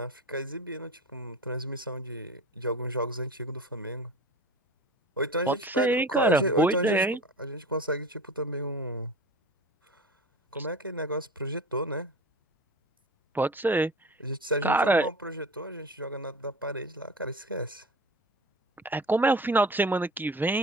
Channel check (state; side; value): normal; both; correlation 0.37